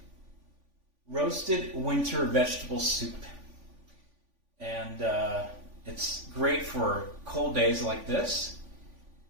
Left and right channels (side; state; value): left; late; 3.5 ms